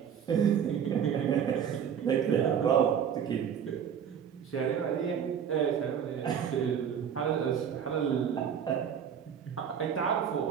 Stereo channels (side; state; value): left; quieter; 8.1 dB